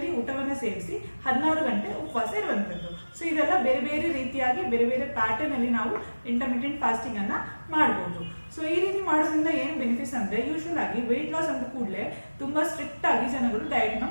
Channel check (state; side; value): inverted; both; correlation -1.00